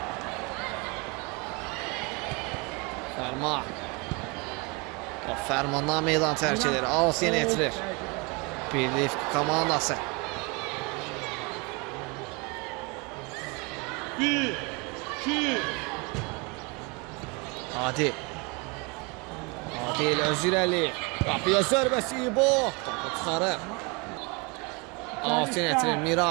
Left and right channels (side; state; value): left; quieter; 28.8 dB